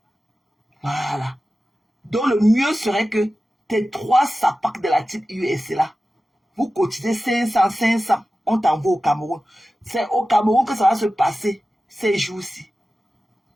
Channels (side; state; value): both; normal; correlation 0.94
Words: Voilà. Donc le mieux serait que tes 3 sapacs de la type US là, vous cotisez 500, on t'envoie au Cameroun. C'est au Cameroun que ça va se passer ces jours-ci.